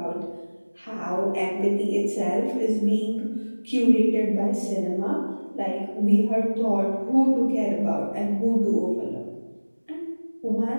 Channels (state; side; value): inverted; both; correlation -1.00